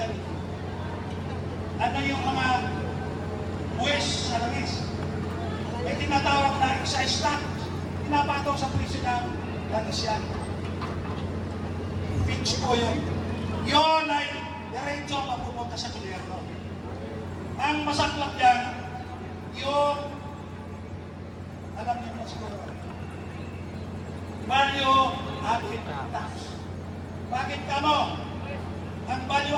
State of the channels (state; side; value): identical; both; correlation 1.00